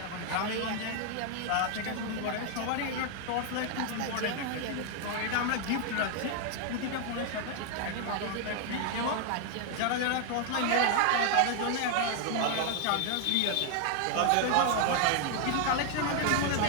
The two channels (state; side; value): different; both; correlation 0.00